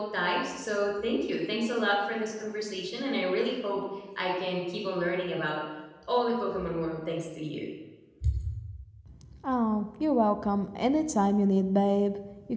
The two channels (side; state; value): both; identical; correlation 1.00